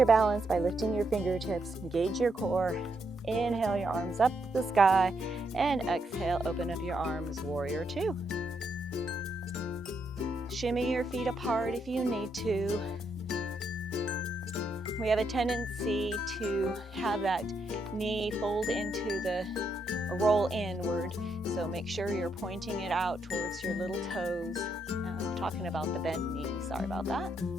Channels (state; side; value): normal; both; correlation 0.78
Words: balance by lifting your fingertips, engage your core. Inhale, your arms up to the sky, and exhale, open up your arms, warrior 2. Shimmy your feet apart if you need to. We have a tendency to have that knee fold into the roll inward, so make sure you're pointing it out towards your little toes. I'm talking about the bent knee, sorry about that.